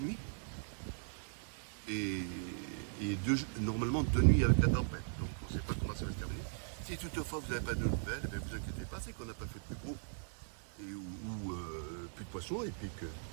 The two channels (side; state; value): left; silent; digital silence